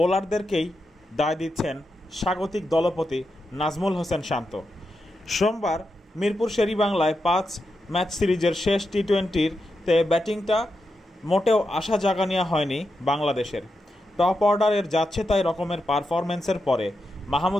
দায় দিচ্ছেন স্বাগতিক দলপতি নাজমুল হোসেন শান্ত। সোমবার মিরপুর শেরেবাংলায় 5 ম্যাচ সিরিজের শেষ টি-20-তে ব্যাটিংটা মোটেও আশা জাগানিয়া হয়নি বাংলাদেশের। টপ অর্ডারের যাচ্ছে তাই রকমের পারফরম্যান্সের পরে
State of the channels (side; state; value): both; normal; correlation 0.87